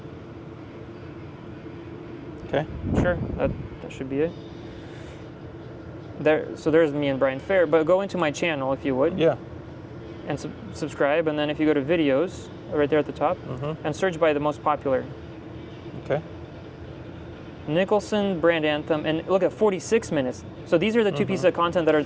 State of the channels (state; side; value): identical; both; correlation 1.00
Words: Okay. Sure. That should be it. There's me and Brian Fair, but go into my channel if you would. Yeah. And subscribe, and then if you go to videos, right there at the top, and search by the most popular. Okay. Nicholson Brand Anthem, and look at 46 minutes. So these are the two pieces of content that are